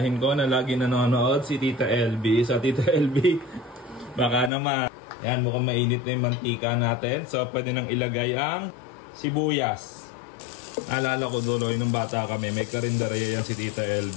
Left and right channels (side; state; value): right; drops out; at 4.5 s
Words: ko na lagi nanonood, si Tita LB. So Tita LB, baka naman. Yan, mukhang mainit na yung mantika natin. So pwede nang ilagay ang sibuyas. Naalala ko duloy nung bata kami, may karinderya yan si Tita